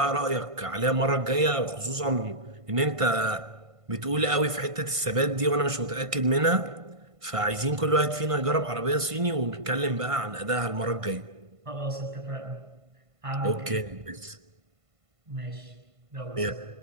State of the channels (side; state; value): left; late; 1.5 ms